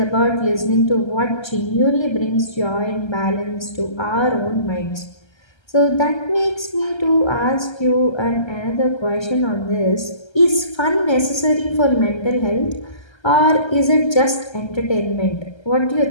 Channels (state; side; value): late; right; 1.3 ms